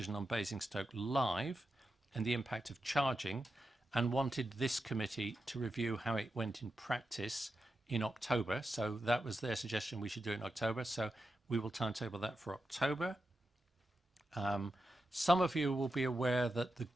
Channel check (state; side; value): normal; both; correlation 0.89